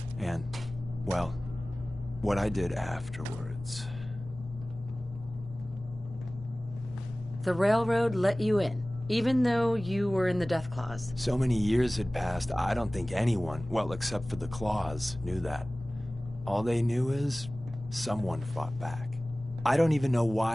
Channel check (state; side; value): normal; both; correlation 0.98